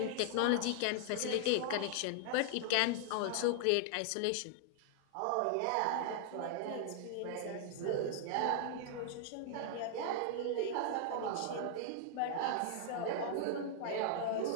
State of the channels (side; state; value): both; different; correlation 0.00